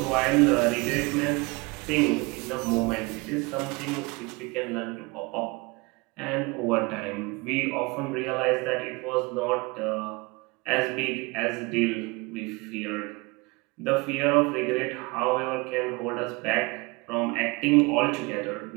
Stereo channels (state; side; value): quieter; left; 26.3 dB